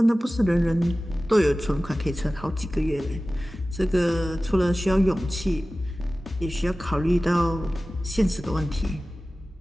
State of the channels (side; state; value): both; normal; correlation 0.96